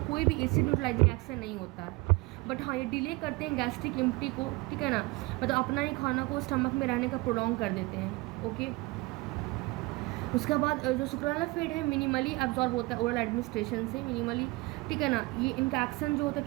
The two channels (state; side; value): quieter; left; 23.5 dB